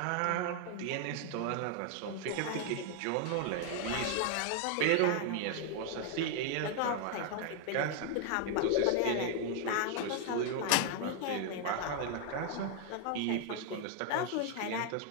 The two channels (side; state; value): both; different; correlation 0.00